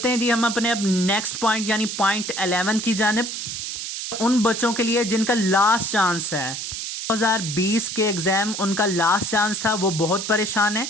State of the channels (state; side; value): noise; right; hiss, 6 dB below the sound